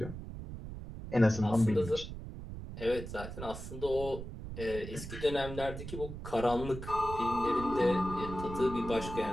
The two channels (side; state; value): right; noise; rumble, 9 dB below the sound